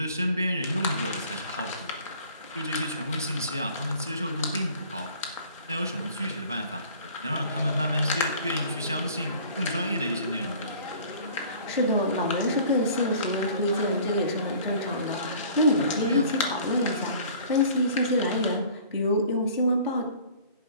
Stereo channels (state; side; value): inverted; both; correlation -0.49